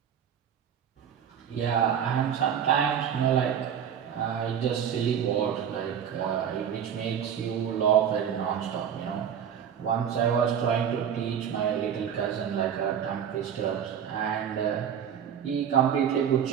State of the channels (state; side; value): quieter; left; 8.5 dB